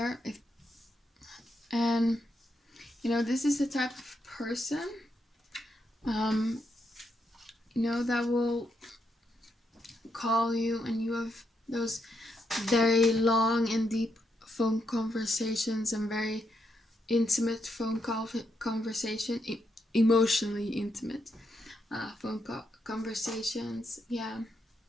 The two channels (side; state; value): both; normal; correlation 0.80